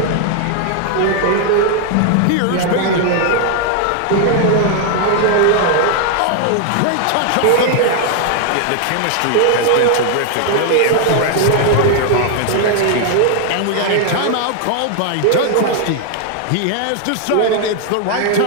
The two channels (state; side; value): different; both; correlation 0.00